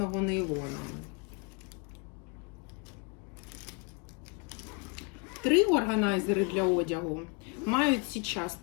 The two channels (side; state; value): right; quieter; 30.2 dB